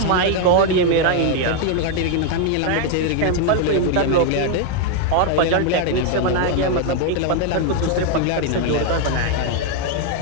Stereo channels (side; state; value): both; different; correlation 0.01